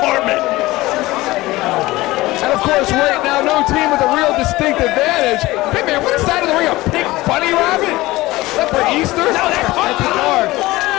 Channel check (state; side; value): quieter; right; 19.0 dB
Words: And of course, right now, no team with a real distinct advantage. Hey man, what is that in the ring? A pink bunny rabbit? Is that for Easter? No, that's the car.